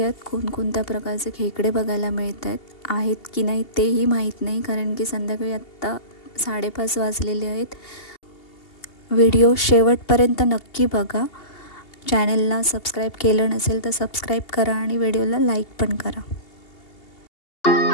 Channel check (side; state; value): right; late; 2.8 ms